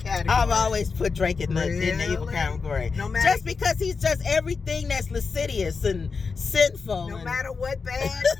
I've always put Drake in the evil Really? category. No matter- Just because he's just everything that's lascivious and sinful. No and matter what bad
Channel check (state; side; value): quieter; right; 4.9 dB